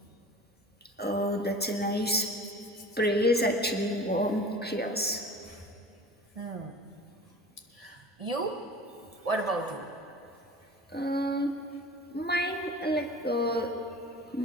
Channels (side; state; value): both; normal; correlation 0.40